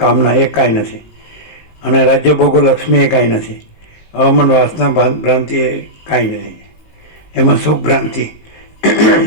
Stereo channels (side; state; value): right; late; 19 ms